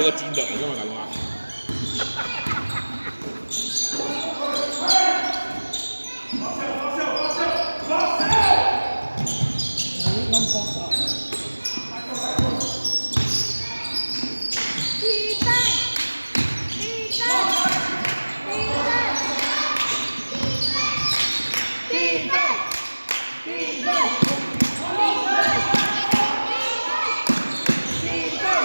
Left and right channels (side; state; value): both; inverted; correlation -1.00